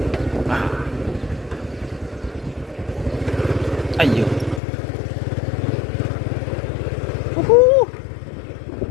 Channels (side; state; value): right; drops out; at 4.6 s